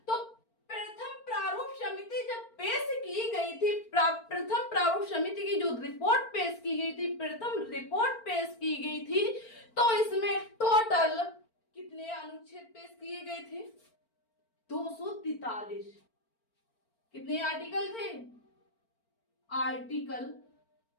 तो प्रथम प्रारूप समिति जब पेश की गई थी, प्रथम प्रारूप समिति की जो रिपोर्ट पेश की गई थी, प्रथम रिपोर्ट पेश की गई थी, तो इसमें टोटल कितने अनुच्छेद पेश किए गए थे? 243। कितने आर्टिकल थे?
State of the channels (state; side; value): late; right; 4.4 ms